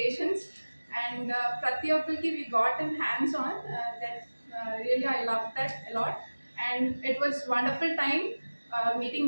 and ప్రతి ఒక్కరికి we got in hands on that really I love that a lot and it was wonderful time meeting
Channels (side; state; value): both; inverted; correlation -1.00